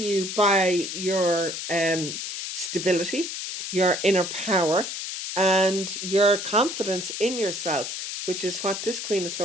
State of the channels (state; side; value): noise; left; hiss, 5 dB below the sound